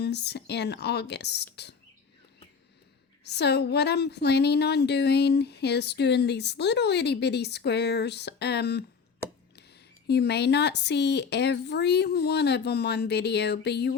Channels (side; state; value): right; quieter; 5.8 dB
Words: in August. So what I'm planning on doing is doing these little itty bitty squares. You may not see every one of them on video, but you